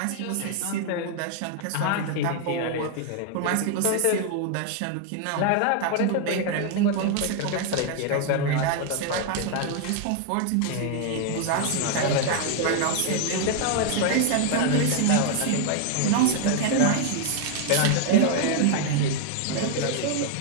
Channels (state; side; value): different; both; correlation 0.00